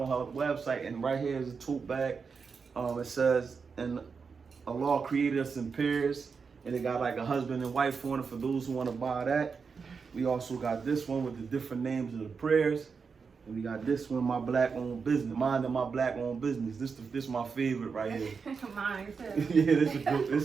her website. And right here is a tote bag. It says, "And Allah created us in pairs," and it got like a husband and wife on it for those who want to buy that. We also got this one with the different names of the prayers. And we got this one, my black owned business, mine and my black owned business. This my favorite right here. Mine too. Yeah,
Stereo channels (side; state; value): left; quieter; 5.4 dB